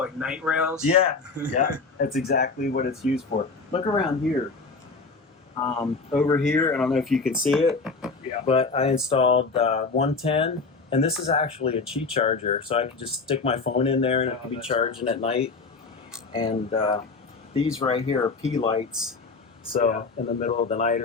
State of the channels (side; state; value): right; quieter; 4.2 dB